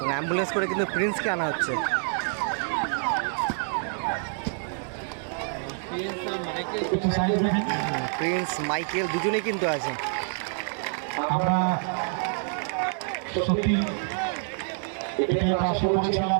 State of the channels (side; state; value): left; silent; 60 dB below the other